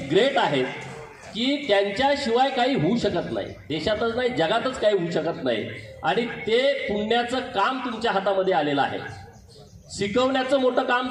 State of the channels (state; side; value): identical; both; correlation 1.00